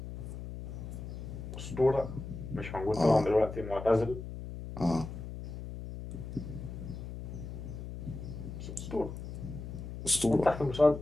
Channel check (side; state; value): left; noise; hum, 9 dB below the sound